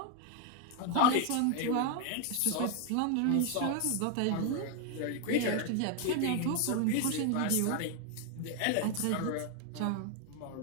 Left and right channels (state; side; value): different; both; correlation 0.01